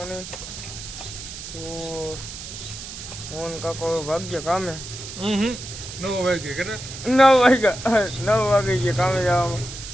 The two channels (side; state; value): right; noise; hiss, 11 dB below the sound